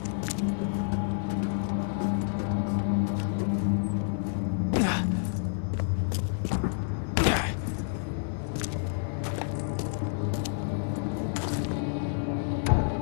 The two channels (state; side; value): silent; right; digital silence